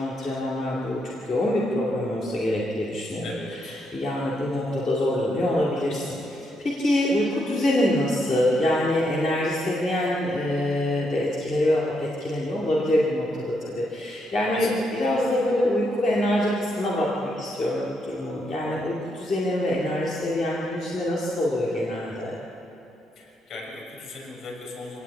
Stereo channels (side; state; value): both; normal; correlation 0.79